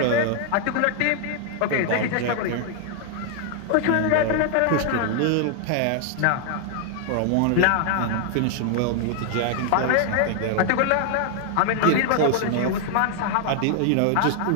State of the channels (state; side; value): different; both; correlation 0.00